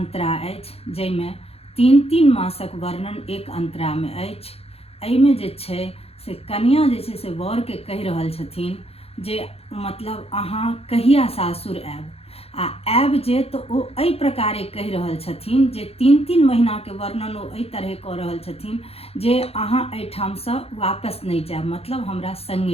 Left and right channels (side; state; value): right; late; 0.29 ms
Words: अछि, जाहिमे 3 मासक वर्णन एक अंतरा में अछि। एहिमे जे छै से कन्या जे छै से वर के कहि रहल छथिन जे मतलब अहाँ कहिया सासुर आयब, आ आयब जे तो ओ एहि प्रकारे कहि रहल छथिन जे 3 महीना के वर्णन ओ एहि तरह कऽ रहल छथिन जे अहाँ एहिठामसँ वापस नहीं जायब, मतलब हमरा